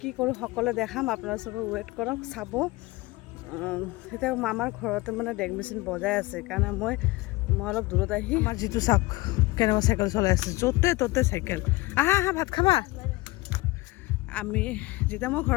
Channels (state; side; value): quieter; right; 21.4 dB